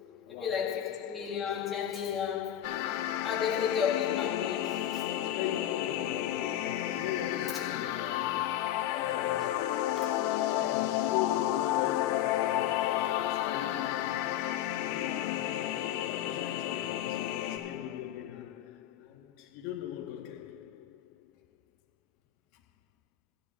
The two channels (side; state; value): right; quieter; 11.6 dB